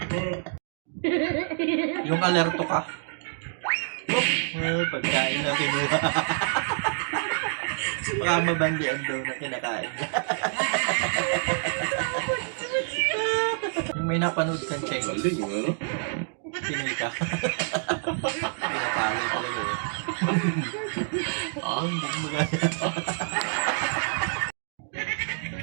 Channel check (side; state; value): left; silent; digital silence